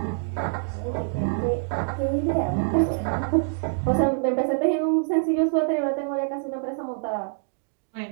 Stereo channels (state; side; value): silent; left; digital silence